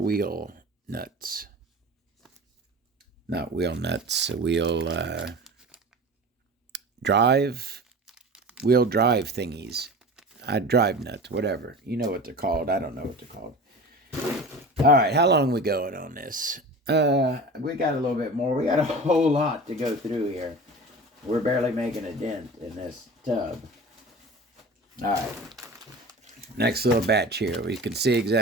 nuts. Not wheel nuts, wheel drive thingies. Drive nuts, whatever. You know what they're called. I don't know what they're called. All right, how long are we going on this? We got a little bit more. We got a whole lot to go through here. We're barely making a dent in this tub. All right. Next little batch here. We can see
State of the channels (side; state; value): both; normal; correlation 0.35